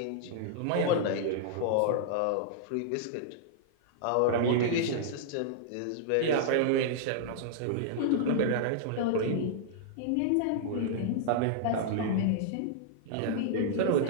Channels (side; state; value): both; different; correlation -0.01